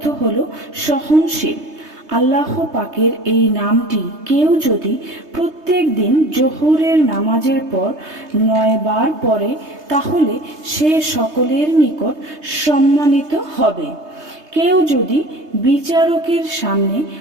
হলো সহনশীল। আল্লাহ পাকের এই নামটি কেউ যদি প্রত্যেক দিন জোহরের নামাজের পর 9 বার পড়ে, তাহলে সে সকলের নিকট সম্মানিত হবে। কেউ যদি বিচারকের সামনে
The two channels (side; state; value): left; late; 3.2 ms